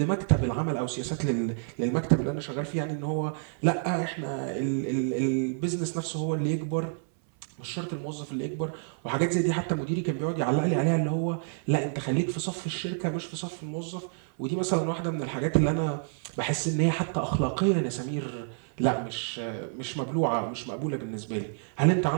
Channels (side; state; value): left; silent; 59 dB below the other